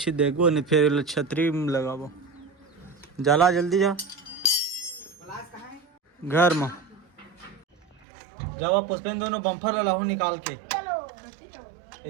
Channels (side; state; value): left; drops out; at 8.0 s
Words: देखो नहीं फिर छतरी में लगावो जाला जल्दी जा प्लास कहाँ है? घर में जब पुष्पेन दोनों बम्फर लाहू निकाल के